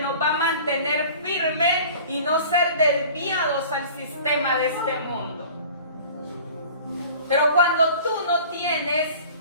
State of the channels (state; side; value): inverted; both; correlation -0.44